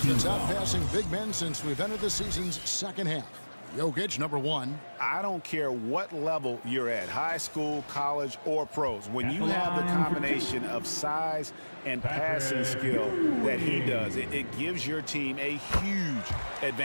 that's outpassing big men since we've entered the season's second half. Jokic, number 1. I don't care what level you're at, high school, college, or pros. When you have the combination of size and passing skill that he does, it gives your team a huge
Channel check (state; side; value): inverted; both; correlation -1.00